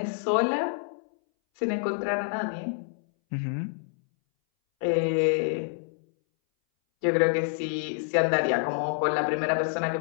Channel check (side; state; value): right; silent; 60 dB below the other